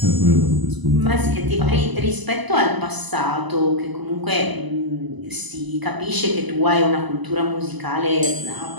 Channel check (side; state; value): left; late; 1.0 ms